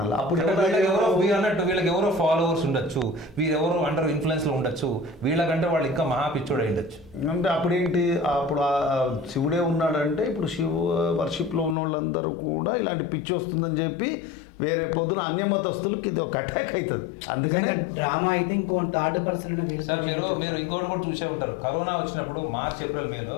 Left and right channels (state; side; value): drops out; right; at 11.8 s